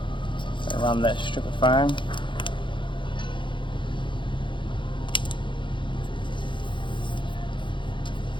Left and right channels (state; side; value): late; right; 0.23 ms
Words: So run that strip of foam.